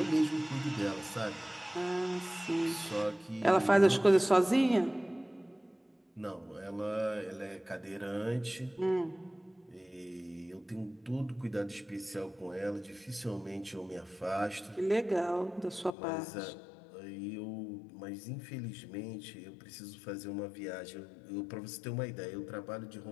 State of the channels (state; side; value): drops out; right; at 15.9 s